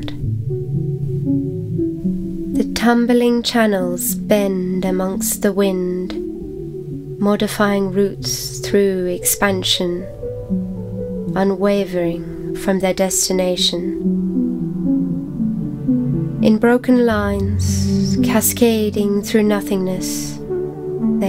The tumbling channels bend amongst the wind, modifying routes through expansion, unwavering from their destination. In broken lines, cascading through nothingness,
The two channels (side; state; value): both; identical; correlation 1.00